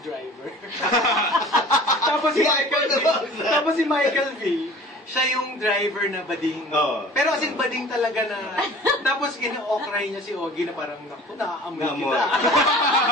driver. Tapos si Michael V, siya yung driver na bading. Oo. Pero as in bading talaga na, tapos kina-okray niya si Ogie na parang, naku, naaamoy Naamoy. kita.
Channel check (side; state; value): both; normal; correlation 0.45